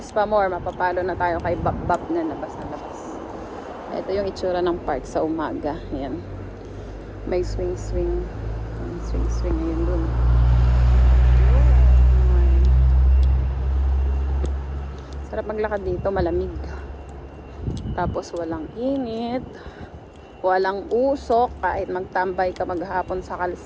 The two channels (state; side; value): identical; both; correlation 1.00